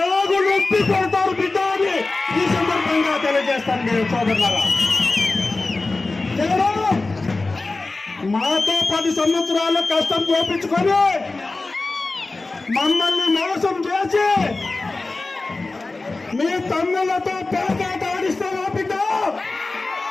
ఆగు నొప్పి కొడతారు బిడ్డ అని ఈ సందర్భంగా తెలియజేస్తాను నేను సోదరులారా. మాతో 10 సంవత్సరాల కష్టం చూపించుకొని మమ్మల్ని మోసం చేసి మీ తమ్ములతో పేకాట ఆడిస్తావా బిడ్డ?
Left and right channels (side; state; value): right; quieter; 3.4 dB